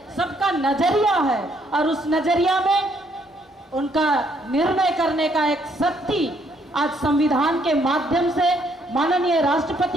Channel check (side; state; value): both; normal; correlation 0.69